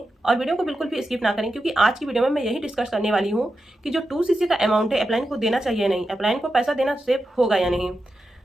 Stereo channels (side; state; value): both; normal; correlation 0.90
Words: और वीडियो को बिल्कुल भी स्किप ना करें, क्योंकि आज की वीडियो में मैं यही डिस्कस करने वाली हूँ कि जो 2cc का अमाउंट है अपलाइन को देना चाहिए या नहीं, अपलाइन को पैसा देना सेफ होगा या नहीं।